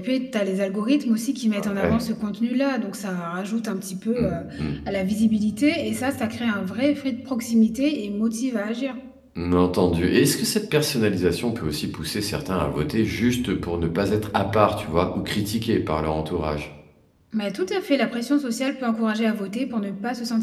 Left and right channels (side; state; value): both; identical; correlation 1.00